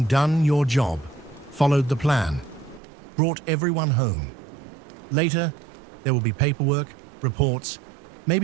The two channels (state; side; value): drops out; left; at 2.8 s